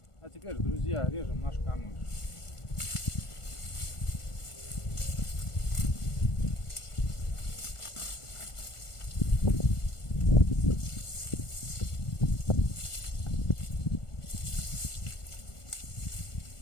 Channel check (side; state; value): right; late; 1.4 ms